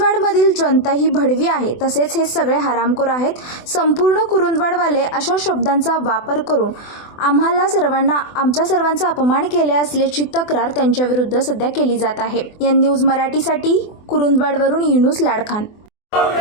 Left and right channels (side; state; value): right; late; 24 ms